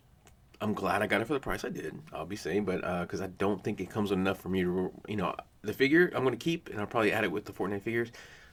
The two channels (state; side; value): identical; both; correlation 1.00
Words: glad I got it for the price I did, I'll be saying, but because I don't think it comes with enough for me to, you know, the figure I'm going to keep, and I'll probably add it with the Fortnite figures.